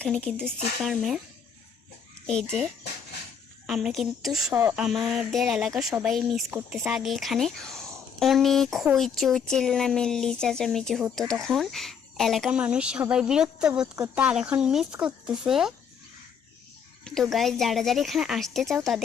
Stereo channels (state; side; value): quieter; right; 7.0 dB